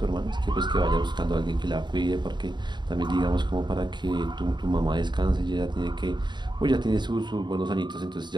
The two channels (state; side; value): late; left; 0.22 ms